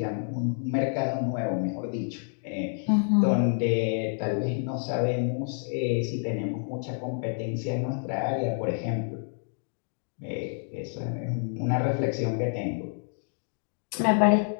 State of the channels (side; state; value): right; silent; 59 dB below the other